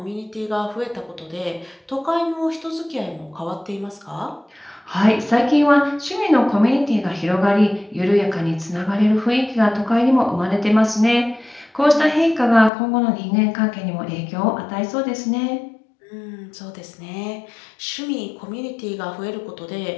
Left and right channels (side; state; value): right; drops out; at 12.7 s